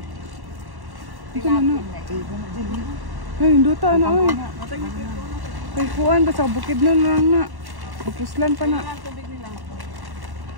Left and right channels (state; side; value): late; left; 1.1 ms